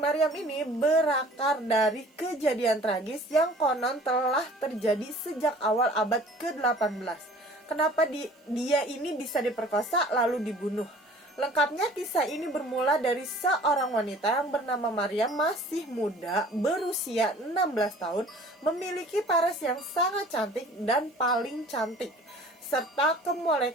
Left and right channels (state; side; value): normal; both; correlation 0.49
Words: ini berakar dari kejadian tragis yang konon telah terjadi sejak awal abad ke-18. Kenapa dia ini bisa diperkosa lalu dibunuh? Lengkapnya kisah ini bermula dari seorang wanita yang bernama Mariam, masih muda, berusia 16 tahun, memiliki paras yang sangat cantik dan paling cantik. Serta